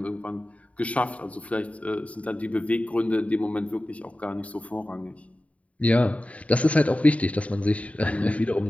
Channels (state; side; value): late; right; 0.066 ms